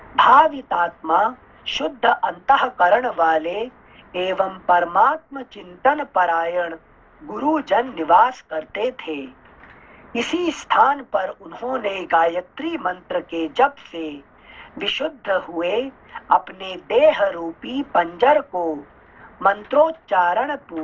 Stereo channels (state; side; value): identical; both; correlation 1.00